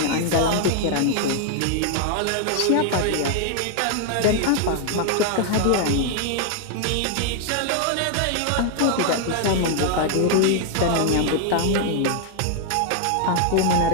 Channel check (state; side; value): different; both; correlation 0.00